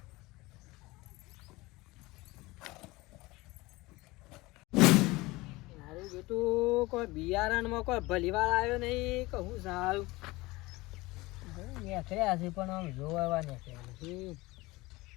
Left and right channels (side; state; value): right; quieter; 21.3 dB